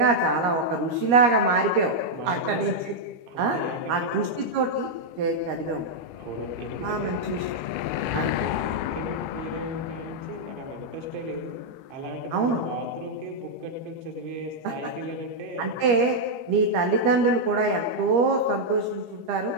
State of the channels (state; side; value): late; left; 13 ms